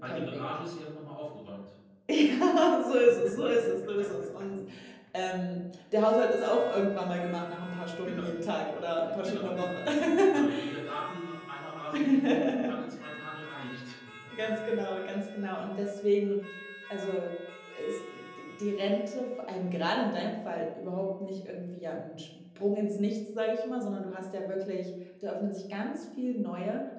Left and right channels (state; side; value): identical; both; correlation 1.00